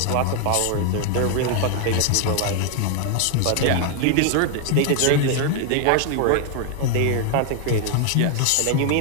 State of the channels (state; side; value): different; both; correlation 0.00